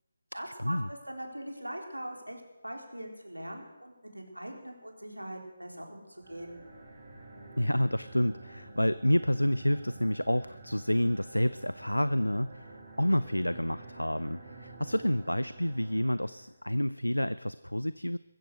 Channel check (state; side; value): inverted; both; correlation -1.00